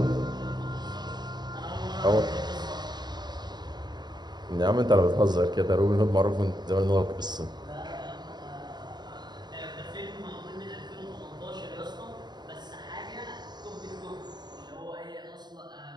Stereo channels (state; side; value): late; left; 0.20 ms